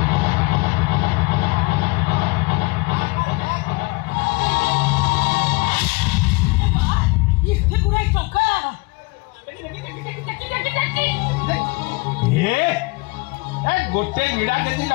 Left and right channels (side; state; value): right; quieter; 25.7 dB